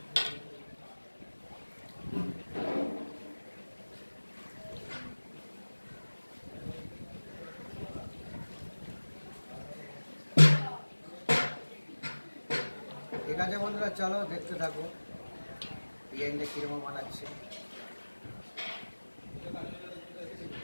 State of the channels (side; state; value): both; inverted; correlation -1.00